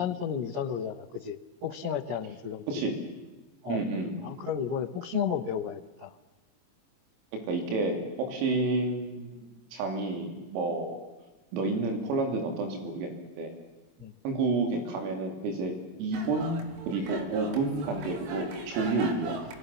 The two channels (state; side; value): late; left; 22 ms